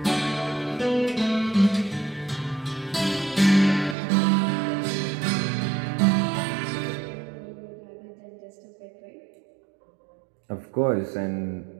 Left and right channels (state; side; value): drops out; left; at 4.0 s